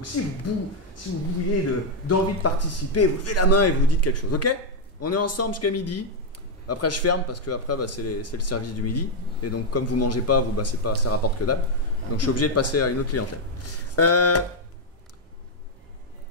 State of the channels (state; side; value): normal; both; correlation 0.00